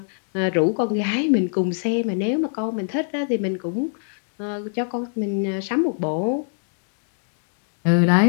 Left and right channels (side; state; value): right; silent; digital silence